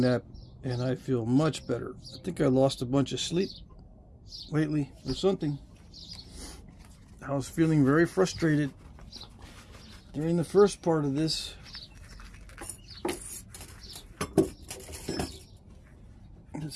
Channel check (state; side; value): identical; both; correlation 1.00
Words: nap, and I feel much better. I think I lost a bunch of sleep lately or something. I was feeling very frustrated during the first part of this.